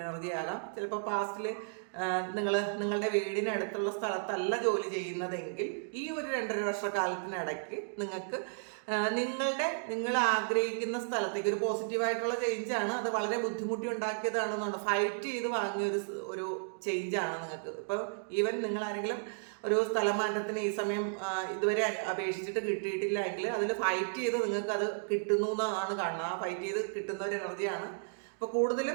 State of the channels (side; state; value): left; silent; digital silence